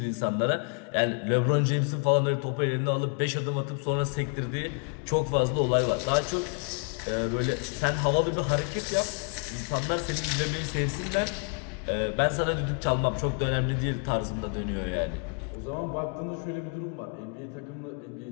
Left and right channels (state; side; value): quieter; right; 39.0 dB